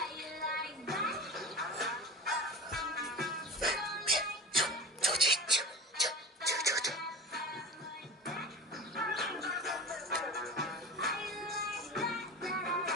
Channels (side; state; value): both; normal; correlation 0.33